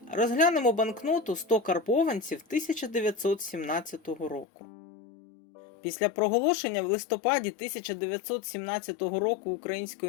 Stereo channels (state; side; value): drops out; right; at 4.5 s